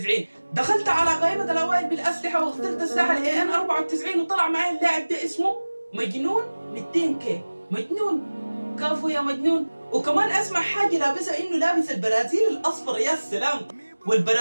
دخلت على قائمة الاوائل بالاسلحة واخترت سلاح الاي ان 94 وطلع معي اللاعب ده اسمه مجنون 200 كي. مجنون كافو يا مجنون. وكمان اسمع حاجة لابسها انه لابس البرازيل الاصفر، يا سلام.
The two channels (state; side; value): inverted; both; correlation -1.00